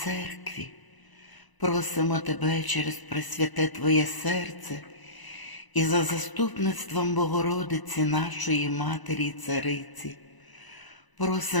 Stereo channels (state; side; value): late; right; 1.0 ms